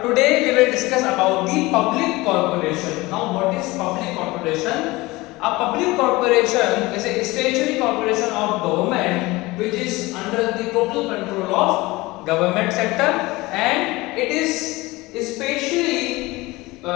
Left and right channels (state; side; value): quieter; right; 21.1 dB